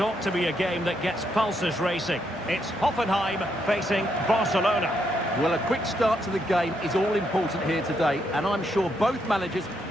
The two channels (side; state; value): both; normal; correlation 0.77